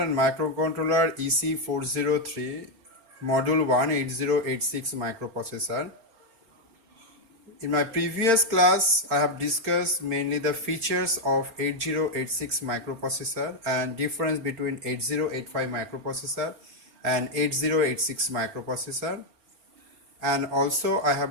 and microcontroller EC403 module 1 8086 microprocessor. In my previous class I have discussed mainly the features of 8086 microprocessor and difference between 8085 microprocessor and 8086 microprocessor, and also I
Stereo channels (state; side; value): late; left; 4.3 ms